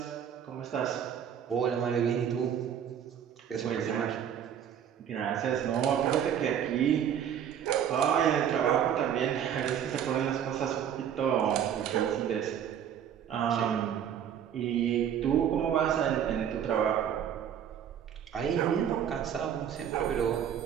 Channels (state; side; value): quieter; left; 9.1 dB